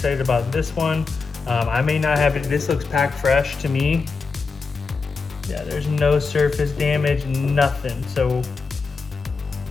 about this one. I may not have it. This looks packed fresh to me. Yeah, there's no surface damage, nothing. So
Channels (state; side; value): quieter; right; 4.6 dB